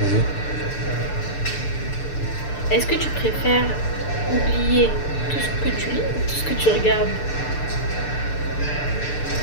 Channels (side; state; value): right; late; 6.8 ms